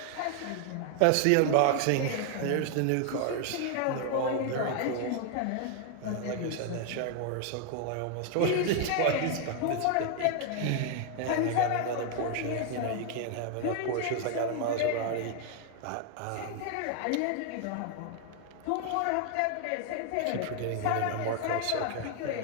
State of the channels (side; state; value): both; different; correlation 0.00